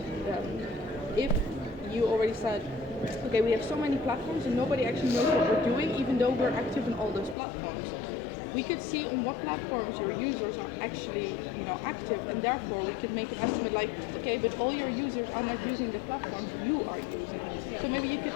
if you already said, okay, we have so many platforms and nobody actually knows what we're doing, even though we're active in all those platforms. We could see on what platforms your users are actually, active, and therefore we could make an estimate like, okay, but all your users are not using the platforms you are using. So maybe you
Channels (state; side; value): drops out; right; at 7.4 s